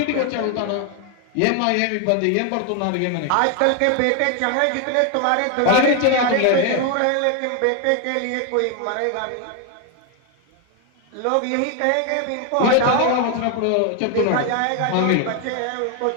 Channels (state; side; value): different; both; correlation 0.01